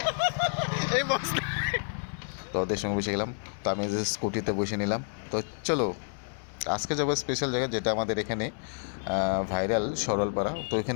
এই বস, তো ওদের সঙ্গে বসে গেলাম। তো আমি যে স্কুটিতে বসে নিলাম। তো চলো আজকে যাবো স্পেশাল জায়গা, যেটা আমাদের এখানে ভাইরাল সরলপাড়া। তো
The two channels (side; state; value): right; silent; 57 dB below the other